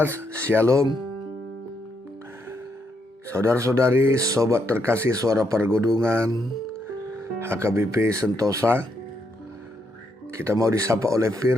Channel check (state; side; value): normal; both; correlation 0.77